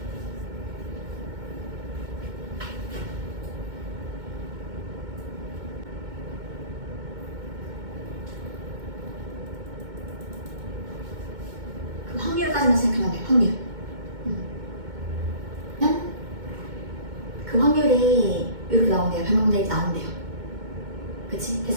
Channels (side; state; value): left; late; 2.2 ms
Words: 그 확률까지만 생각하면 돼. 확률. 그 확률이 이렇게 나온대요. 100만 분의 1 나온대요. 그치?